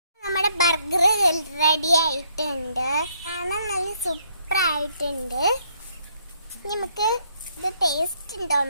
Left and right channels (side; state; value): both; inverted; correlation -0.69